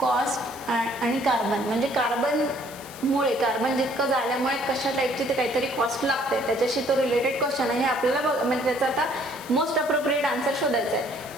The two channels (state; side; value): noise; left; hiss, 17 dB below the sound